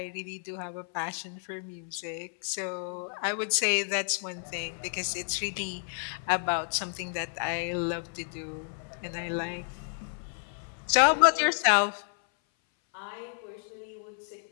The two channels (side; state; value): right; silent; 56 dB below the other